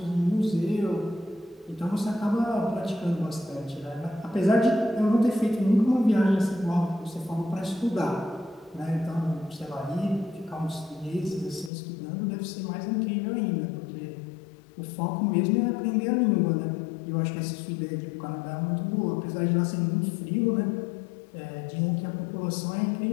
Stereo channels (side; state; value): right; drops out; at 11.7 s